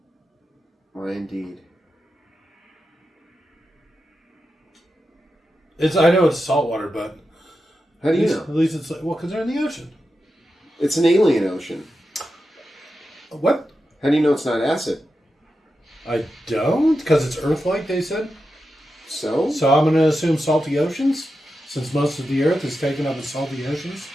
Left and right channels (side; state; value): both; normal; correlation 0.89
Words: Why indeed. I know it's salt water, but How do you know? at least it's like, well, because they're in the ocean. It's an alien ocean. What? How do you know it's not acid? I don't, because it's Earth-like. They said. So? So I'm going to assume salty oceans, since most of the Earth is taken up in salty oceans.